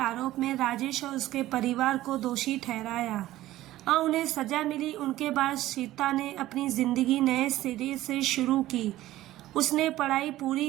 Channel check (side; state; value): left; quieter; 15.3 dB